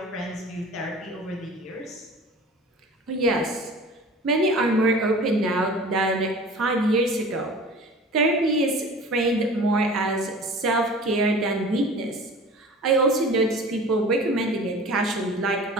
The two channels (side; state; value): both; normal; correlation 0.41